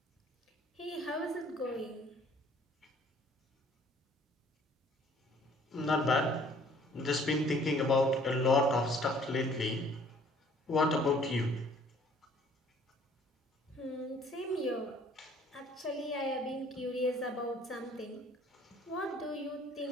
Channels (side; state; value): both; normal; correlation 0.57